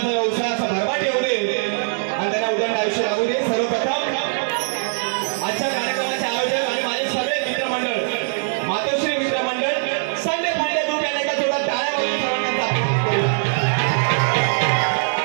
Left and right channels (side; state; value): left; silent; 65 dB below the other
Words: व्यवसाय असा भरभराट येऊ दे आणि त्यांना उदंड आयुष्य लागू दे। सर्वप्रथम आजच्या कार्यक्रमाचे आयोजक आणि माझे सगळे मित्रमंडळ, मातोश्री मित्रमंडळ, संडे फायदे ग्रुप यांना एका जोरात टाळ्या वाजवून सर्वांना